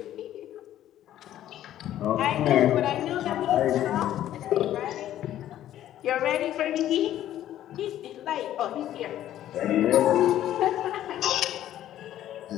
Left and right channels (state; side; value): quieter; right; 12.3 dB